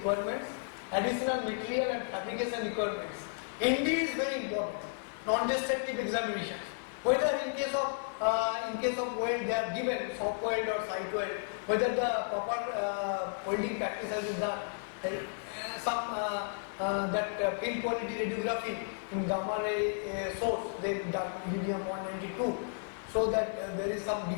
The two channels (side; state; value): right; silent; 56 dB below the other